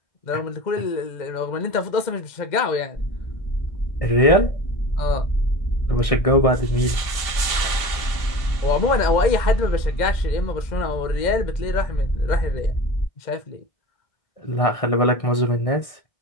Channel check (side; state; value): right; late; 1.6 ms